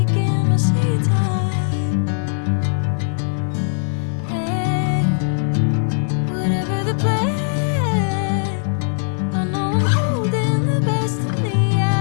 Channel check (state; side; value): silent; right; 60 dB below the other